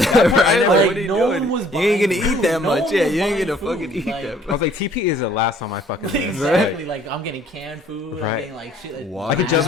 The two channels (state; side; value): normal; both; correlation 0.58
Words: Like, Like, what are you no doing? one was You ain't buying gonna eat food. that No much. one Yeah, was you ain't buying gonna food. fucking eat Like, that I much. was like, TP is the last on my fucking list. Exactly. Like I'm getting canned food. I'm Right. getting like shit. Water. I could jump